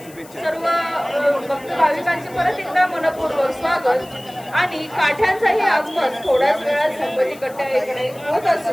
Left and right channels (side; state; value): left; noise; hiss, 22 dB below the sound